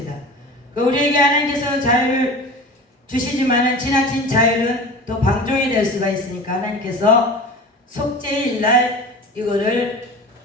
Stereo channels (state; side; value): normal; both; correlation 0.35